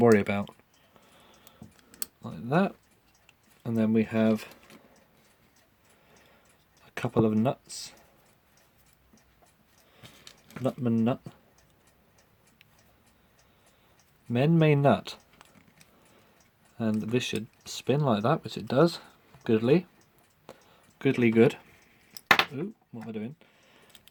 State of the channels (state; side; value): identical; both; correlation 1.00